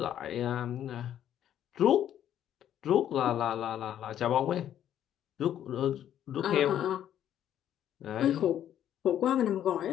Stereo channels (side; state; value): right; quieter; 10.7 dB